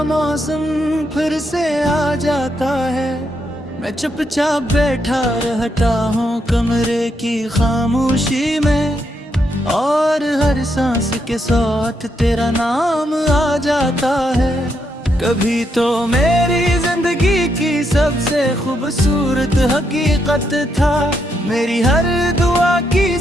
मौसम फिर से आ जाता है। मैं चुपचाप बैठा रहता हूँ कमरे की खामोशी में, और हर सांस के साथ तेरा नाम आ जाता है। कभी तो मेरी जिंदगी की सबसे खूबसूरत हकीकत था, मेरी हर दुआ की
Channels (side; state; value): both; normal; correlation 0.79